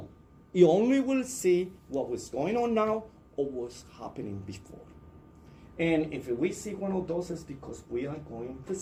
You only will see what was going on now or what's happening before. And if we see one of those, it's because we are going to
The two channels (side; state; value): both; identical; correlation 1.00